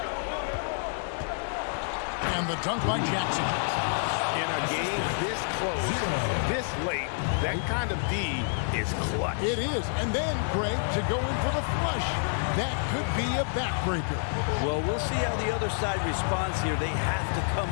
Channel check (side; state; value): right; silent; digital silence